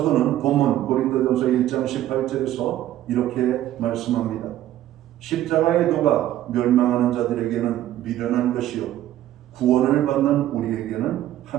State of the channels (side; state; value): left; quieter; 13.2 dB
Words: 본문 고린도전서 1장 18절에서 이렇게 말씀합니다. 십자가의 도가 멸망하는 자들에게는 미련한 것이요 구원을 받는 우리에게는